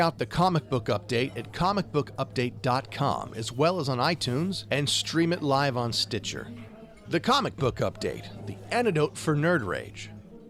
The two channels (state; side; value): identical; both; correlation 1.00